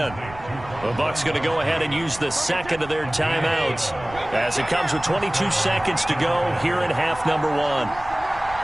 The Bucs going to go ahead and use the second of their timeouts as it comes with 22 seconds to go here in half number 1.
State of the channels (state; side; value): noise; right; rumble, 17 dB below the sound